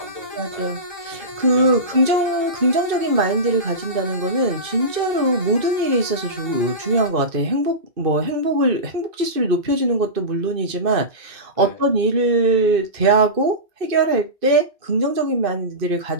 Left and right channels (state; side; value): late; left; 2.5 ms